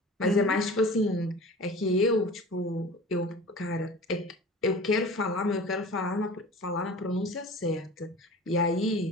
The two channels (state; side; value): normal; both; correlation 0.39